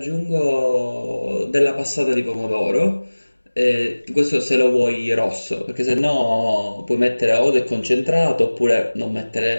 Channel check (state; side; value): inverted; both; correlation -1.00